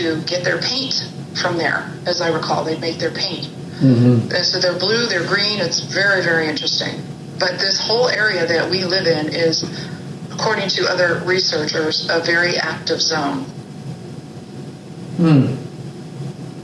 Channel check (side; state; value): both; identical; correlation 1.00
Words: get their paint from there, as I recall. They'd make their paint. Mm-hmm. And so they're blue, they're green. It's very, very interesting. But this whole area that we live in is, according to other researchers, a very active zone.